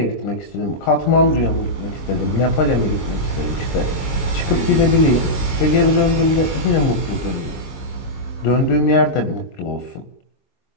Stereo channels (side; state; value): right; late; 22 ms